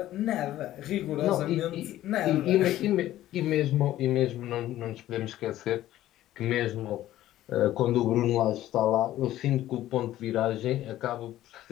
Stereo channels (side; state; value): right; quieter; 14.0 dB